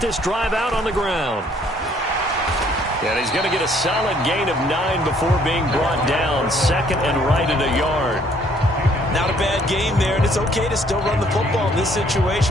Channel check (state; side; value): normal; both; correlation 0.63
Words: drive out on the ground. And he's going to get a solid gain of 9 before being brought down. Second and right at a yard. Not a bad game there, and it's okay to still run the football in this